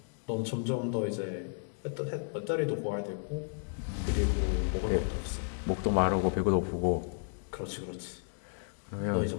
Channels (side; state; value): right; silent; digital silence